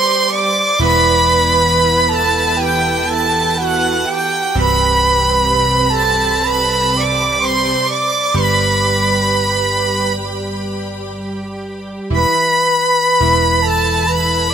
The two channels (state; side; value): normal; both; correlation 0.73